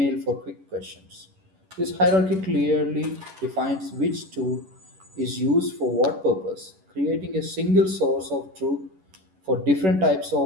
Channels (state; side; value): late; left; 11 ms